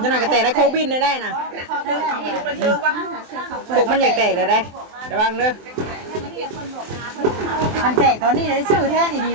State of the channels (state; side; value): late; left; 23 ms